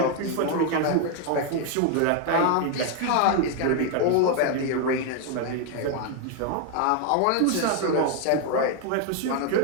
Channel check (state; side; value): different; both; correlation 0.01